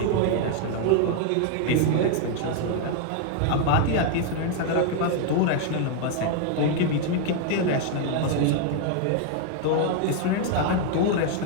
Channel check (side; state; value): both; different; correlation 0.00